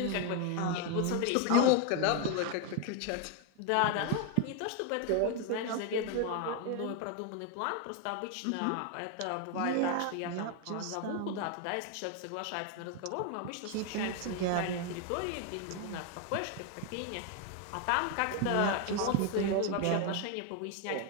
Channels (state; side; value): different; both; correlation 0.01